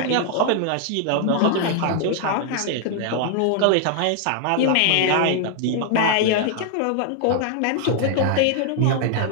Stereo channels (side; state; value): both; different; correlation 0.00